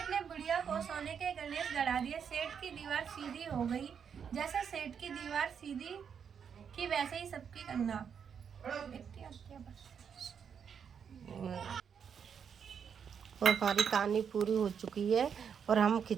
ने बुढ़िया को सोने के गणेश गढ़ा दिए। सेठ की दीवार सीधी हो गई। जैसे सेठ की दीवार सीधी की वैसे ही सबकी करना। और हमारी कहानी पूरी हो चुकी है और हम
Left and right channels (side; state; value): left; quieter; 7.3 dB